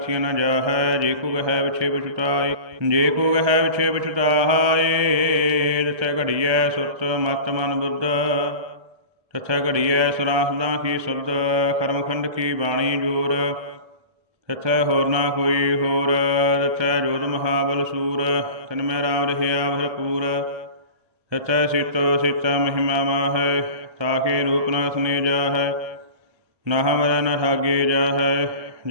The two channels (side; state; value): left; late; 1.3 ms